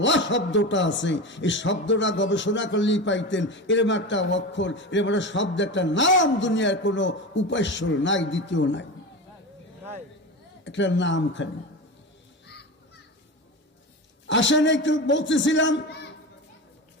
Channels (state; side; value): normal; both; correlation 0.25